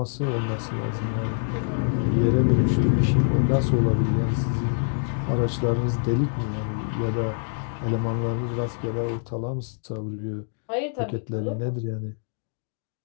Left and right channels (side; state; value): right; silent; digital silence